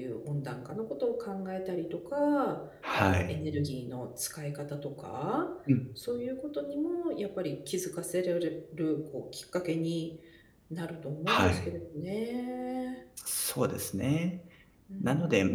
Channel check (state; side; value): identical; both; correlation 1.00